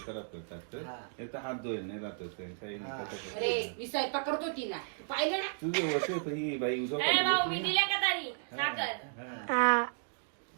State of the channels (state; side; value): silent; left; digital silence